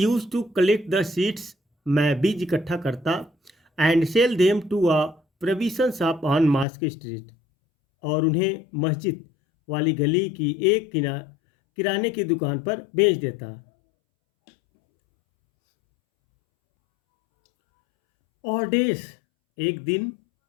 to collect the seeds, मैं बीज इकट्ठा करता, and sell them to a provision shop on mosque street, और उन्हें मस्जिद वाली गली की एक किराने की दुकान पर बेच देता। और डेज, एक दिन,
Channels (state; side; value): drops out; right; at 6.7 s